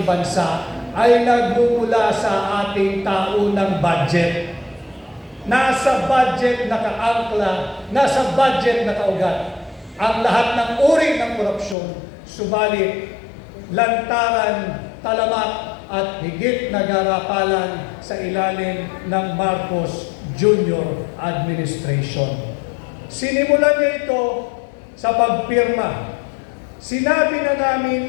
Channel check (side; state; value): right; drops out; at 11.8 s